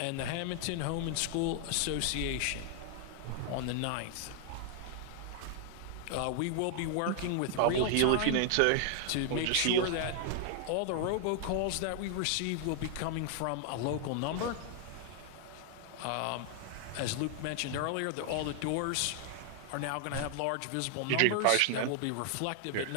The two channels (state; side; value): different; both; correlation 0.00